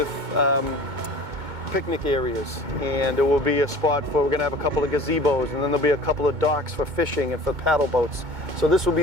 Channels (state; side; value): late; left; 2.2 ms